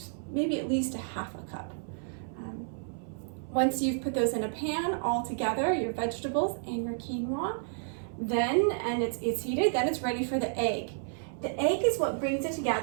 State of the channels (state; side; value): silent; left; 57 dB below the other